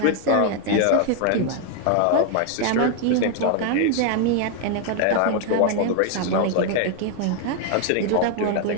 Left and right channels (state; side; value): different; both; correlation 0.00